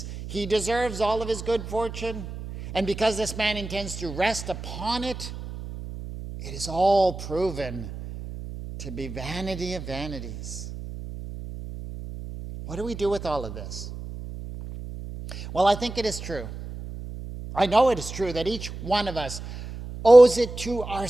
he deserves all of his good fortune, and because this man intends to rest upon it, it is all proven to be vanity of vanities. What do we do with all of this? Well, I think it is true. I know it is true that each one of us owes it to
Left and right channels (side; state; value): right; noise; hum, 10 dB below the sound